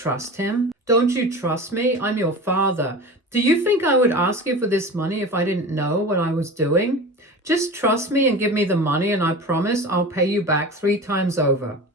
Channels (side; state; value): both; normal; correlation 0.33